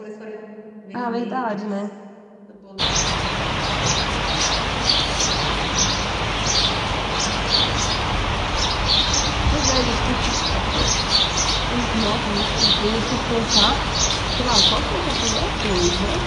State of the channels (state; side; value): identical; both; correlation 1.00